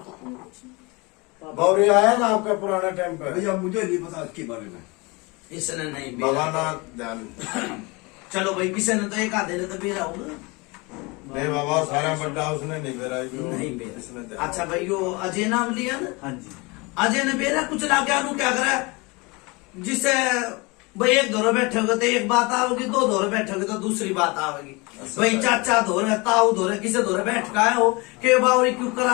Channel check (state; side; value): quieter; right; 26.3 dB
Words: गौरी आया ना आपका पुराना टाइम पे? भैया मुझे नहीं पता इसके बारे में। इसने नहीं बाबा ना ध्यान। चलो भाई किसी ने तो एक आधे ने तो बेरा होगा। नहीं बाबा सारा बड्डा उसने नहीं बेरा। नहीं बेरा। अच्छा भाई यो अजय नाम लिया ना? हाँ जी। अजय ने बेरा कुछ ला के क्या करा जिसे भाई एक दौरे बैठोगे तो एक बात आओगी, दो दौरे बैठोगे तो दूसरी बात आवेगी। भाई चाचा धोरे ताऊ धोरे किसे धोरे बैठ का हो के बावरी क्यों